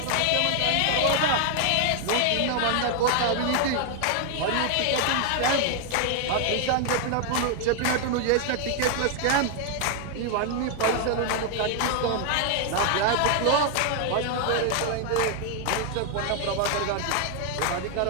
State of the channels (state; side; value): different; both; correlation 0.00